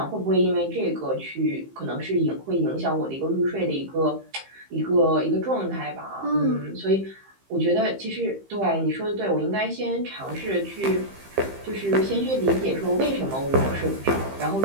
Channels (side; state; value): left; late; 15 ms